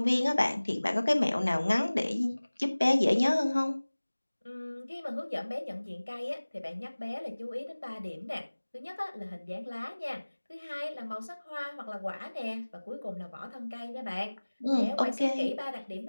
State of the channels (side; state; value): both; inverted; correlation -1.00